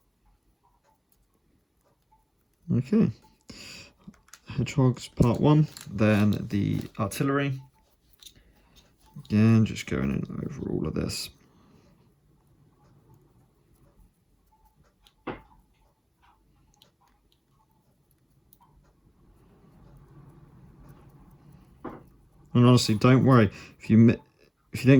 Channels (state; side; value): identical; both; correlation 1.00